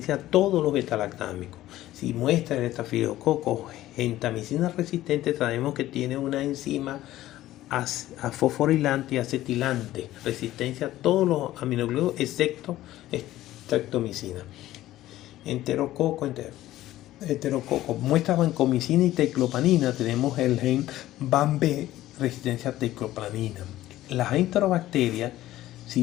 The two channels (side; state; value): right; quieter; 14.8 dB